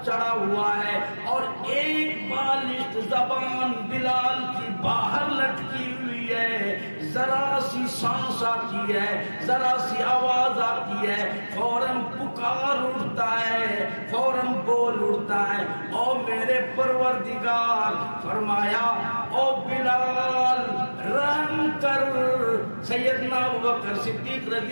چڑھا ہوا ہے اور ایک بالشت زبان بلال کی باہر لٹکی ہوئی ہے، ذرا سی سانس آتی ہے، ذرا سی آواز آتی ہے، فوراً پکار اٹھتا ہے، فوراً بول اٹھتا ہے، او میرے پروردگار، فرمایا او بلال رحم کر۔ سیدنا ابوبکر صدیق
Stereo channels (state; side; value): inverted; both; correlation -1.00